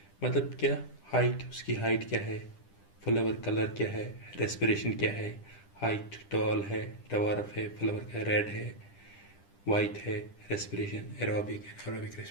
मतलब क्या? हाइट, उसकी हाइट क्या है, फ्लावर कलर क्या है, रेस्पिरेशन क्या है, हाइट टॉल है, डवार्फ है, फ्लावर का रेड है, वाइट है, respiration aerobic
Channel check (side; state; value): right; late; 10 ms